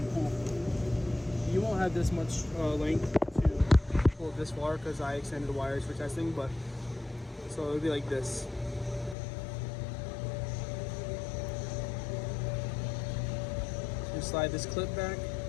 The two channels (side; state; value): right; drops out; at 9.2 s